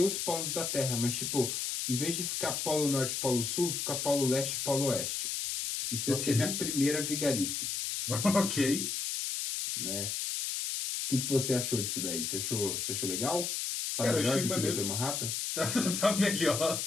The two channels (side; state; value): left; noise; hiss, 2 dB below the sound